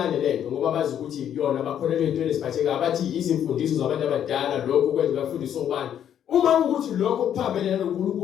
lento ngoba bazi ukuthi yona bakholelwe into eziphatheka abathi izimfundiso zabantu abadala lokho kwenza bafundisa ubani. Uma ukuthi lokho kuphambene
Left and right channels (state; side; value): quieter; right; 9.7 dB